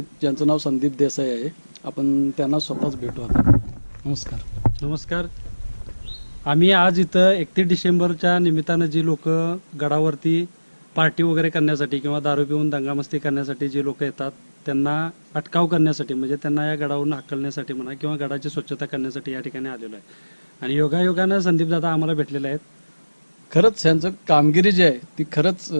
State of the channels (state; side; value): inverted; both; correlation -1.00